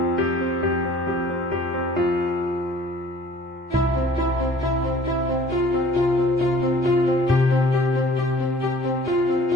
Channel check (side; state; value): both; normal; correlation 0.51